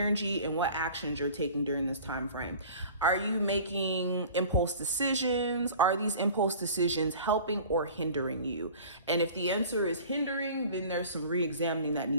and what actions you're taking during this time frame. Are you making impulse decisions? Are these impulse decisions helping or hindering you? And if the answer is hindering, then there's some re-examining that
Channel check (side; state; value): both; inverted; correlation -0.43